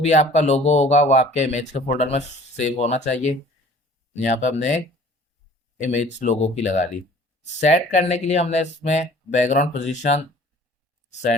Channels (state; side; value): normal; both; correlation 0.50